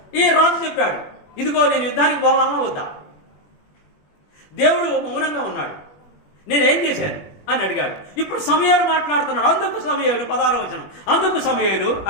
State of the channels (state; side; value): late; right; 21 ms